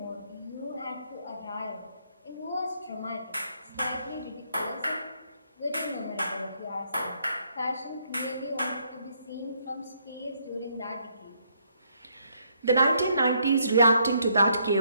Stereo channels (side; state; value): both; inverted; correlation -0.72